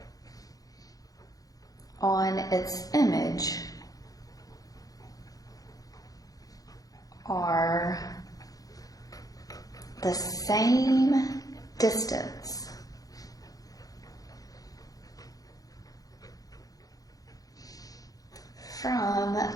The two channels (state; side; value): late; right; 0.17 ms